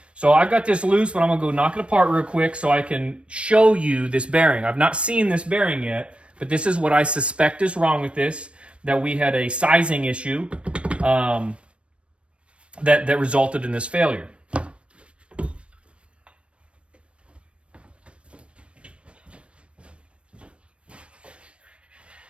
So I've got this loose, but I'm gonna go knock it apart real quick so I can show you this bearing. I've not seen this bearing yet, but this is what I suspect is wrong with this, that we had a sizing issue that resulted in this failure.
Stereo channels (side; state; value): left; late; 0.060 ms